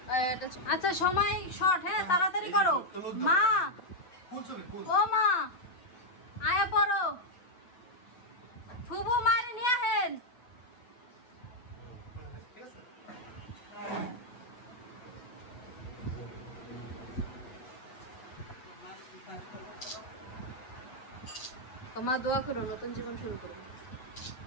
আচ্ছা সময় শর্ট, হ্যাঁ তাড়াতাড়ি করো। মা ফুল ছবি ফুল ও মা আয়া পড়ো, ফুবু মারি নিয়ে আহেন। ঠিক আছে। মা দোয়া করো, নতুন জীবন শুরু করো।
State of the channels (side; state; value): right; late; 8.2 ms